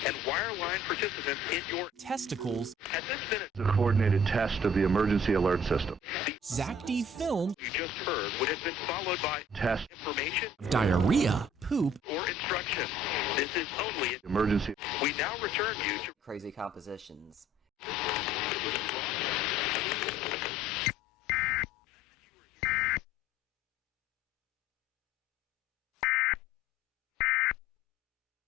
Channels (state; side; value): normal; both; correlation 0.54